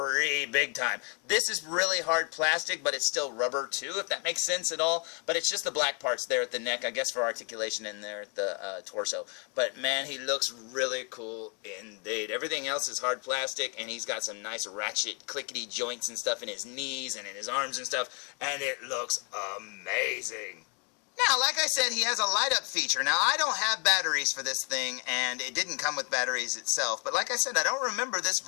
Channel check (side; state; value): right; quieter; 36.0 dB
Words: big time. This is really hard plastic, but it's still rubber too, if that makes sense at all. But it's just the black parts there at the neck, I guess for articulation, and there at the torso. But man, he looks really cool indeed. Everything else is hard plastic, and he's got some nice ratchet clickety joints and stuff in his knees and in his arms and stuff, and it looks amazing. Now, like I said, he has a light-up feature. Now, I don't have batteries for this thing, and it didn't come with batteries itself. But like I said, I don't remember this